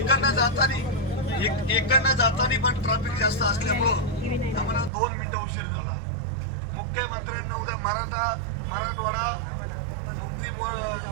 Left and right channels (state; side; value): drops out; left; at 4.9 s